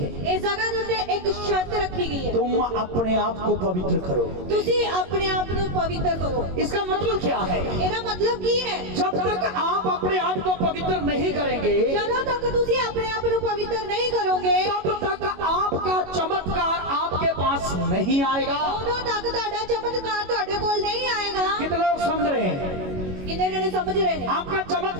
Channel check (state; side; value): late; left; 22 ms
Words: इस जगह ਦੇ ਉੱਤੇ ਇੱਕ ਸ਼ਰਤ ਰੱਖੀ ਗਈ ਹੈ। तुम अपने आप को पवित्र करो। ਤੁਸੀਂ ਆਪਣੇ ਆਪ ਨੂੰ ਪਵਿੱਤਰ ਕਰੋ। इसका मतलब क्या है? ਇਹਦਾ ਮਤਲਬ ਕੀ ਹੈ? जब तक आप अपने आप को पवित्र नहीं करेंगे, ਜਦੋਂ ਤੱਕ ਤੁਸੀਂ ਆਪਣੇ ਆਪ ਨੂੰ ਪਵਿੱਤਰ ਨਹੀਂ ਕਰੋਗੇ, तब तक आपका चमत्कार आपके पास नहीं आएगा। ਉਦੋਂ ਤੱਕ ਤੁਹਾਡਾ ਚਮਤਕਾਰ ਤੁਹਾਡੇ ਕੋਲ ਨਹੀਂ ਆਏਗਾ। कितने लोग समझ रहे हैं? ਕਿੰਨੇ ਜਣੇ ਸਮਝ ਰਹੇ ਨੇ? आपका